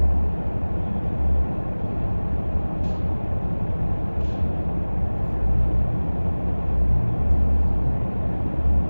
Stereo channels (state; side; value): inverted; both; correlation -1.00